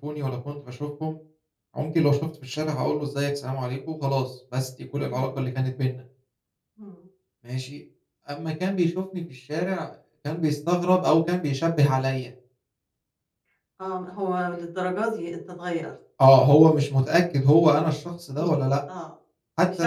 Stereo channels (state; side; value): identical; both; correlation 1.00